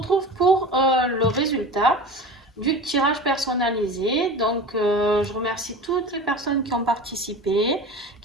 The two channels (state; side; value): normal; both; correlation 0.33